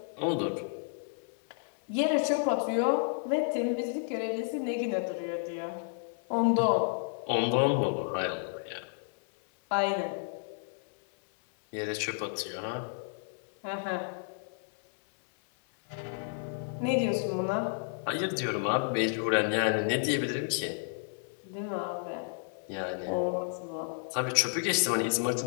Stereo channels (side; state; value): right; silent; 57 dB below the other